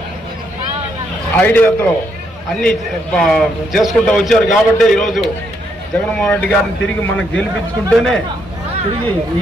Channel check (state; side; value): normal; both; correlation 0.76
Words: ఐడియాతో అన్ని చేసుకుంటూ వచ్చారు. కాబట్టి ఈరోజు జగన్మోహన్ రెడ్డి గారిని తిరిగి మనం గెలిపించుకుంటేనే తిరిగి